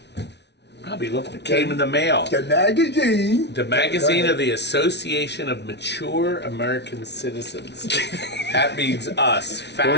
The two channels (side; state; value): right; late; 0.50 ms